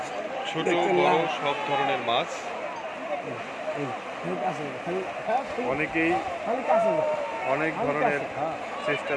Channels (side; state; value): both; identical; correlation 1.00